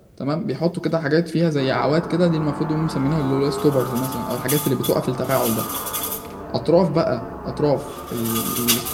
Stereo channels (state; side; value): identical; both; correlation 1.00